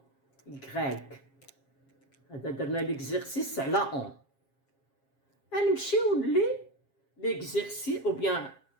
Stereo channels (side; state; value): right; late; 7.4 ms